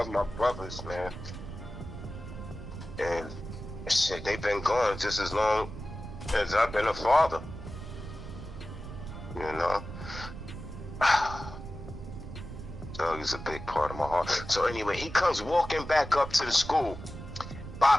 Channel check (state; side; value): noise; right; rumble, 10 dB below the sound